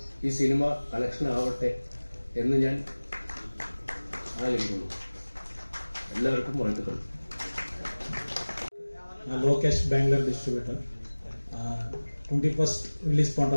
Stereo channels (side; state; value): both; inverted; correlation -1.00